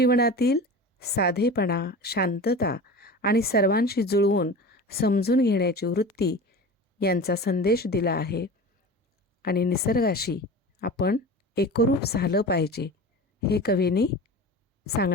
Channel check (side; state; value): both; normal; correlation 0.33